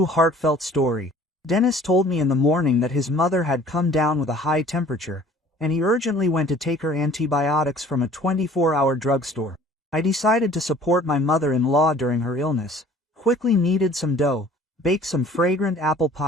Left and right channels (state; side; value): normal; both; correlation 0.51